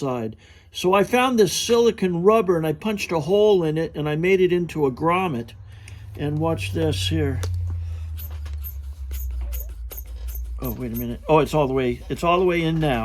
So I found this silicone rubber, and I punched a hole in it, and I made it into a grommet. And watch this here. Oh, wait a minute. Oh, it's all the way in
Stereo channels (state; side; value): identical; both; correlation 1.00